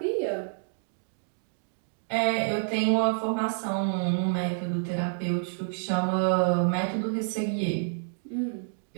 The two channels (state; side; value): silent; left; digital silence